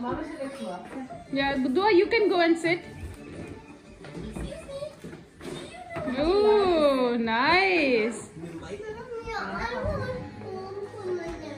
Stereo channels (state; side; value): identical; both; correlation 1.00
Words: Yeah, Duaa, you can go and sit. Oh, nice.